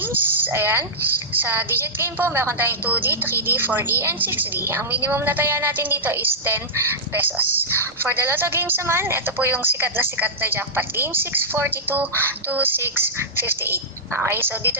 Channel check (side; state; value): both; normal; correlation -0.13